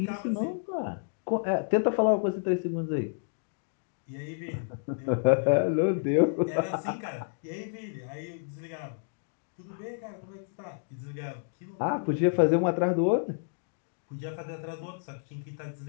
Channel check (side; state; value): right; silent; digital silence